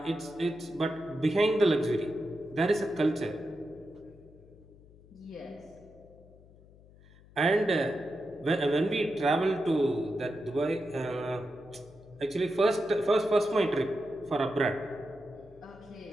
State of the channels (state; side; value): noise; left; hum, 24 dB below the sound